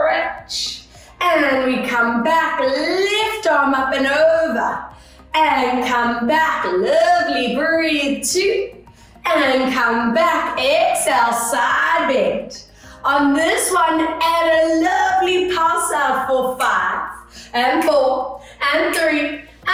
And we come back, left arm up and over. And come back, lovely, breathe two. And come back, exhale, side bend. On this one, add a lovely pulse out for 5. And 4, and 3,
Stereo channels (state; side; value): identical; both; correlation 1.00